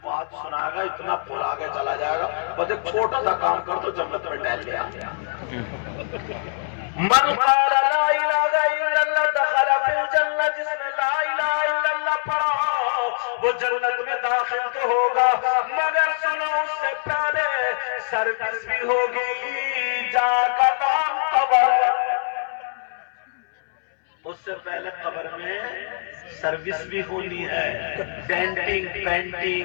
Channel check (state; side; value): silent; right; 62 dB below the other